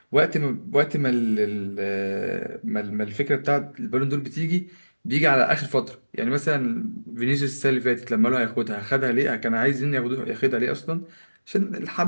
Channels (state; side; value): inverted; both; correlation -1.00